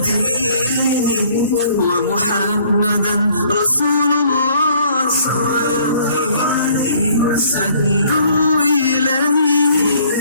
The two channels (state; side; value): inverted; both; correlation -0.59